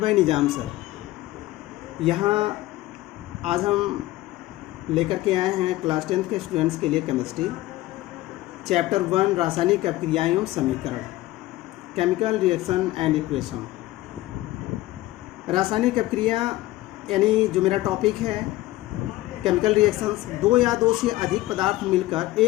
Nizam sir. यहाँ आज हम लेकर के आए हैं क्लास 10th के स्टूडेंट्स के लिए केमिस्ट्री चैप्टर 1 रासायनिक अभिक्रियाएं एवं समीकरण, केमिकल रिएक्शन एंड इक्वेशन। रासायनिक अभिक्रिया यानी जो मेरा टॉपिक है केमिकल रिएक्शंस, दो या दो से अधिक पदार्थ मिलकर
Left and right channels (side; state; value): right; quieter; 17.1 dB